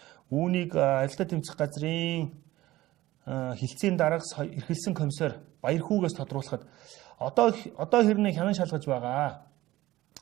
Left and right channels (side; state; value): left; quieter; 16.9 dB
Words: Үүнийг авилгаа тэмцэх газрын хилцээний дараагаас эрхэлсэн комиссар Баярхүүгээс тодруулахад одоо хэрнээ хянан шалгаж байгаа.